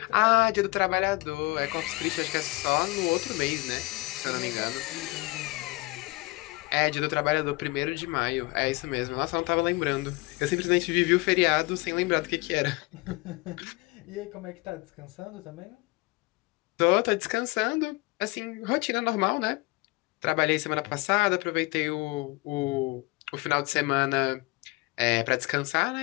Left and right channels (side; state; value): right; quieter; 24.1 dB